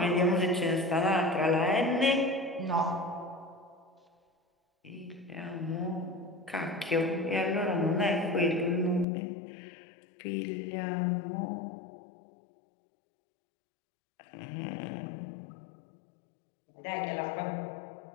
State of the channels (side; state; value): right; drops out; at 9.1 s